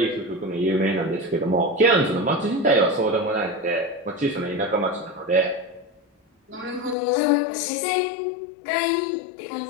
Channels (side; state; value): right; drops out; at 7.0 s